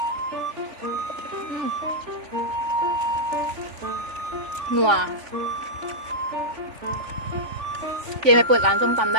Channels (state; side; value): late; left; 3.4 ms